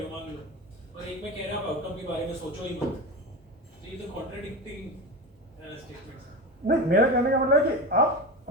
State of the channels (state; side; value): normal; both; correlation 0.24